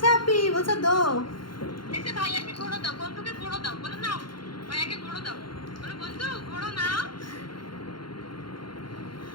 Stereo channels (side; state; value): right; late; 0.72 ms